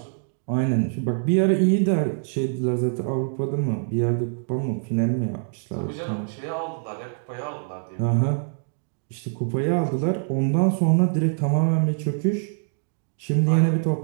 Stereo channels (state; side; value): silent; left; digital silence